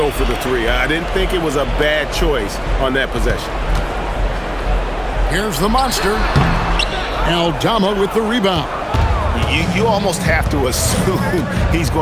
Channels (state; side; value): identical; both; correlation 1.00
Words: for the 3. I didn't think it was a bad choice on that possession. Here's the monster. Aldama with the rebound. You almost have to assume he's